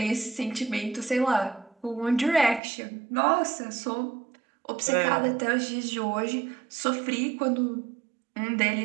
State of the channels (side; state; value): left; drops out; at 2.6 s